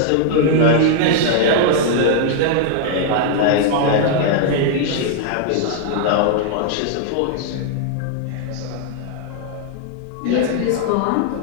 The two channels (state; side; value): different; both; correlation -0.01